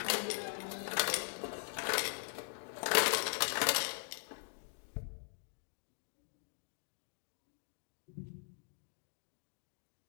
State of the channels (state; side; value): silent; right; digital silence